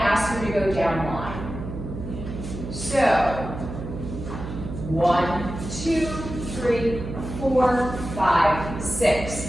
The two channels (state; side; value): noise; right; hum, 8 dB below the sound